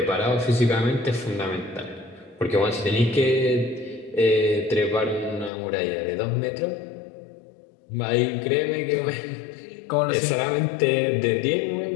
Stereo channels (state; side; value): drops out; right; at 5.5 s